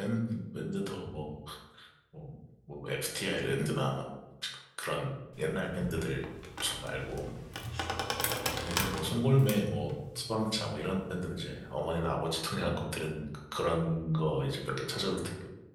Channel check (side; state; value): both; identical; correlation 1.00